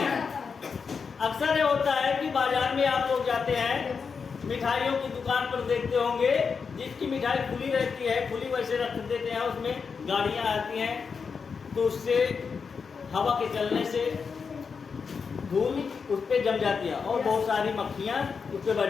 अक्सर ये होता है कि बाजार में आप लोग जाते हैं, मिठाइयों की दुकान पर देखते होंगे, जिसकी मिठाई खुली रहती है, खुली वैसे रख देते हैं, उसमें गाड़ियाँ आती हैं तो उससे हवा के चलने से धूल उस पर जम जाती है और बहुत सारी मक्खियाँ उस पर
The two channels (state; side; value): quieter; right; 5.6 dB